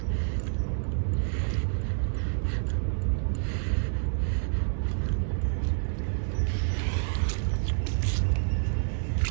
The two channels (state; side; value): silent; left; digital silence